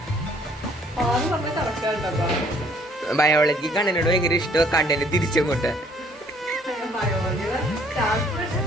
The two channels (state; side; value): normal; both; correlation 0.61